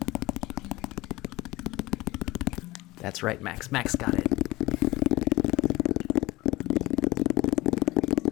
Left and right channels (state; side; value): quieter; right; 19.9 dB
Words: That's right, Max. Max got it.